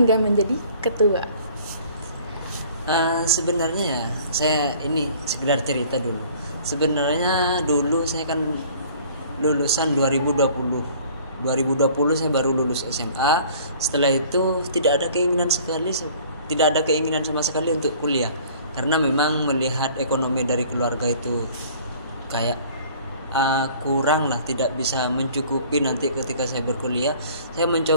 menjadi ketua. Sebenarnya ya, saya ini sekedar cerita dulu. Sebenarnya dulu saya kan lulusan 2020 saya baru lulus SMA. Setelah itu tidak ada keinginan sama sekali untuk kuliah, karena memang melihat ekonomi dari keluarga itu kayak kurang lah, tidak bisa mencukupi nanti ketika saya berkuliah. Saya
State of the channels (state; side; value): inverted; both; correlation -0.51